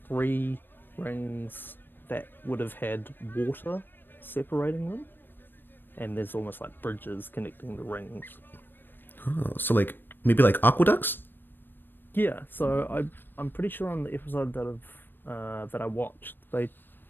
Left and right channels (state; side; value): late; right; 0.095 ms